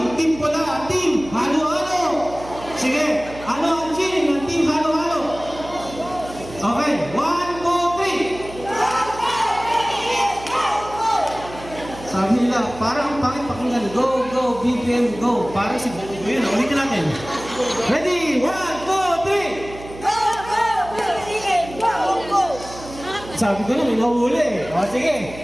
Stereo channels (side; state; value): right; noise; hum, 15 dB below the sound